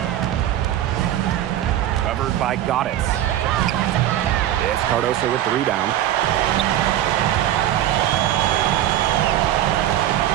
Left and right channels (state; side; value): quieter; left; 12.3 dB